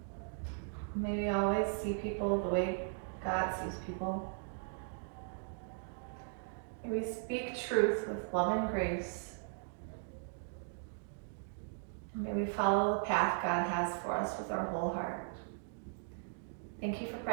May we always see people the way God sees people. May we speak truth with love and grace. And may we follow the path God has for us with our whole heart. Thank you for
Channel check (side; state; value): left; silent; digital silence